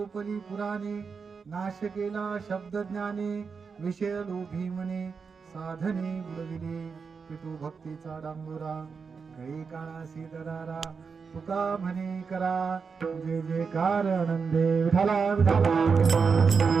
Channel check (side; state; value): left; quieter; 5.4 dB